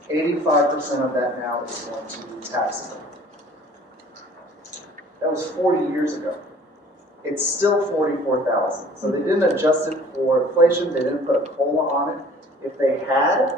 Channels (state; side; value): normal; both; correlation 0.50